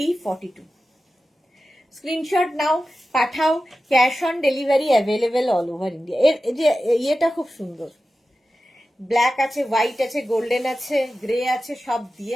42। Screenshot নাও, পাঠাও। Cash on delivery available all over India. এর যে ইয়েটা খুব সুন্দর, ব্ল্যাক আছে, হোয়াইট আছে, গোল্ডেন আছে, গ্রে আছে, সব দিয়ে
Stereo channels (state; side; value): normal; both; correlation 0.94